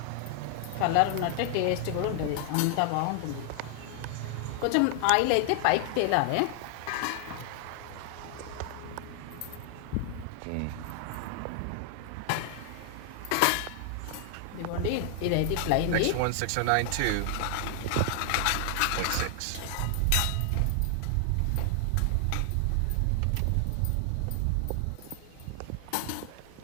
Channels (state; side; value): different; both; correlation 0.00